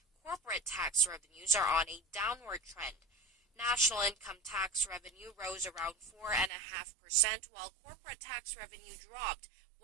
corporate tax revenues are on a downward trend. National income tax revenue rose around 4.5%, while corporate tax revenue dropped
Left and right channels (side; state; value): left; drops out; at 6.5 s